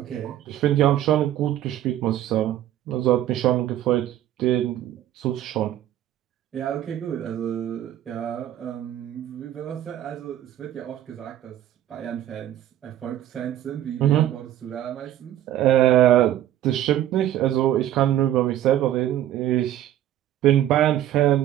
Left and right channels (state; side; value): quieter; left; 12.4 dB